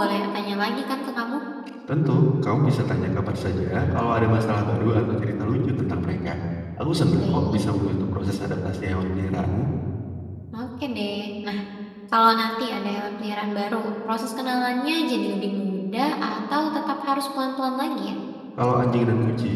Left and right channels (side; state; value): both; identical; correlation 1.00